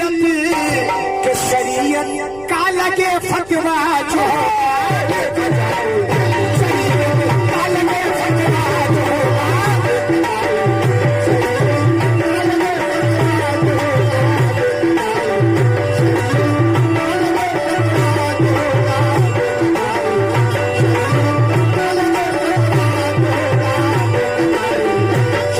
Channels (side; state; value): left; noise; rumble, 24 dB below the sound